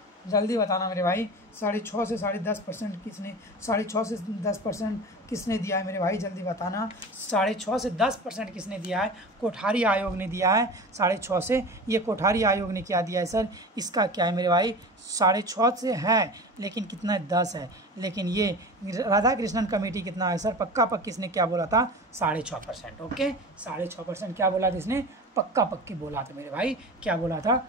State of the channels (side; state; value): both; normal; correlation 0.33